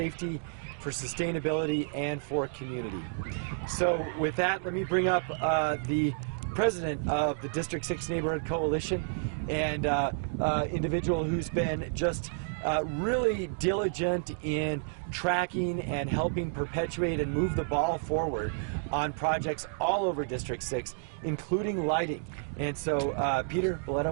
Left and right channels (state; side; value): silent; left; digital silence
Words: for sustainability, and for community. So with that, let me bring up the president of the District 6 Neighborhood Coalition, and individual who's been just really diligent in tracking and helping perpetuate and move the ball forward on projects all over District 6, including lighting. And so, Peter